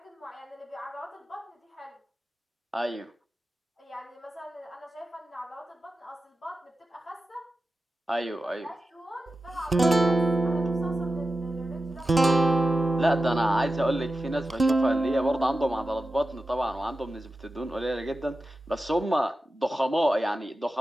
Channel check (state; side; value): normal; both; correlation 0.92